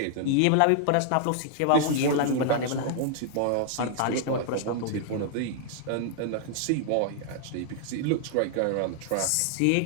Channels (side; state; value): both; different; correlation -0.01